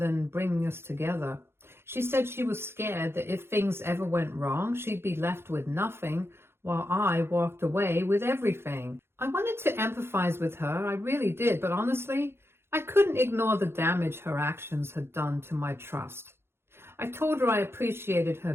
bringing us together. She said she was scared that if things ever went wrong, she'd be left with nothing, while I walked away with everything. I wanted to empathize with her, I really did, but honestly, I couldn't ignore the damage her actions had done to my trust. I told her I appreciated her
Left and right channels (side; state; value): left; late; 0.12 ms